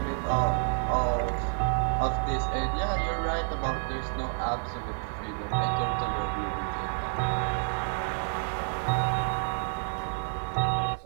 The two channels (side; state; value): left; silent; 58 dB below the other